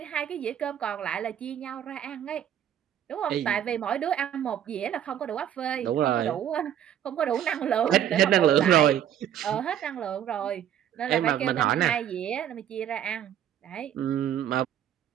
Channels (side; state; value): left; quieter; 10.2 dB